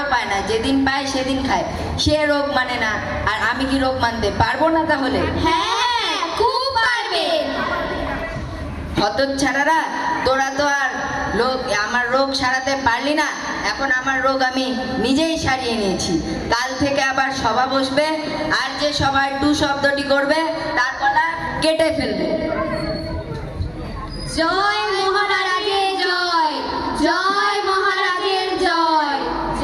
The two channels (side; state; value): both; identical; correlation 1.00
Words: পায় না, যেদিন পায় সেদিন খায়। সে রোগ মানে না, আর আমি কি রোগ মানতে পারবো না তাহলে? হ্যাঁ, খুব পারবে। হতচ্ছাড়ারা, তোরা তো আর আমার রোগ সারাতে পারলি না। এখন আমার রোগ আমি নিজেই সারিয়ে নিয়েছি। কাল থেকে আবার সভা বসবে, আর যে সভায় টু শব্দটি করবে তার গলা কেটে ফেলবে। জয় মহারাজের জয়, জয় মহারাজের জয়,